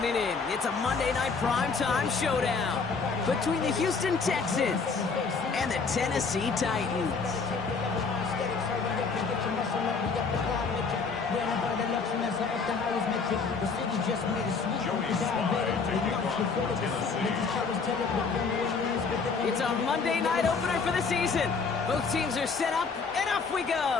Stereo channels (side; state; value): right; quieter; 4.9 dB